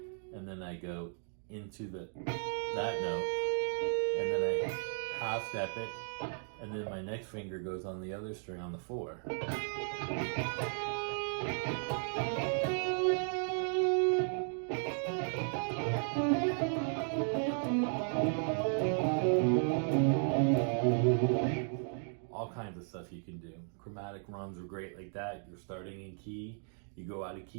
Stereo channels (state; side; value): silent; left; 54 dB below the other